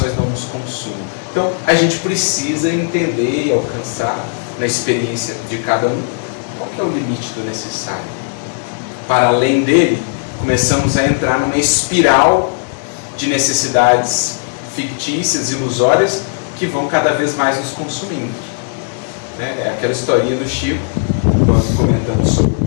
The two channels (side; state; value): right; silent; digital silence